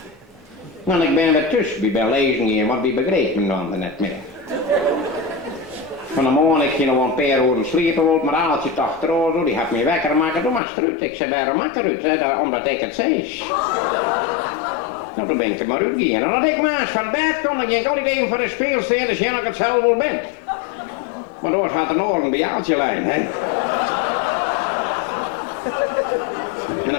Want ik ben weer tussen, ik ben lezen hier, want die begreep me dan net meer. Van de morgen ik ging nog een paar uur sliepen, maar als je het achterover, die had me wekker maken, doe maar eruit. Ik zei, waarom maak eruit? Omdat ik het zei. Nou, dan ben ik er maar uitgegaan. En als ik maar eens van bed kom, dan ging ik altijd even voor de speel staan, dus jij dat ik het zelf wel ben. Maar door gaat een oren bij Aaltje lijn, hè. En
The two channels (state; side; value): drops out; right; at 10.6 s